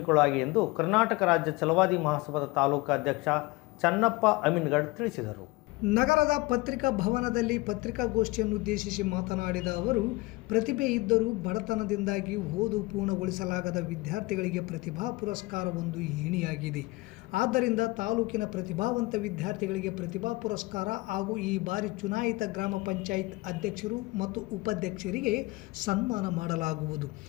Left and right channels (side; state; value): right; quieter; 22.3 dB